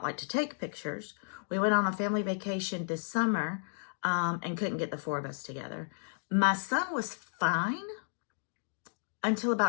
like to take pictures. We went on a family vacation this summer and couldn't get the 4 of us together. My son was fine until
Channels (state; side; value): silent; right; digital silence